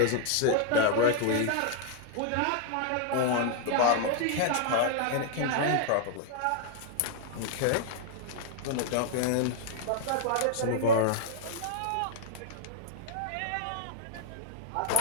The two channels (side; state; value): both; different; correlation -0.01